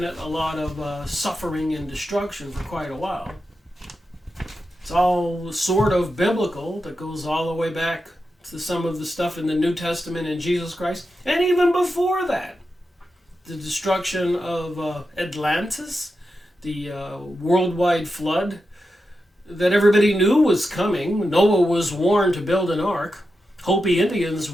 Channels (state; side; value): normal; both; correlation 0.89